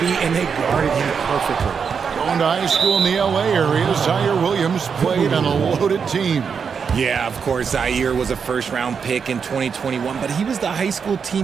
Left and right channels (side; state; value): left; quieter; 6.3 dB